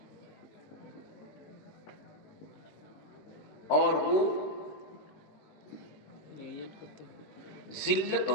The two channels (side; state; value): right; late; 20 ms